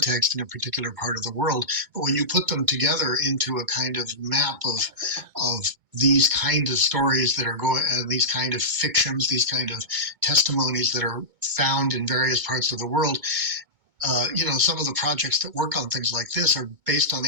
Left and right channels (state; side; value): late; left; 2.2 ms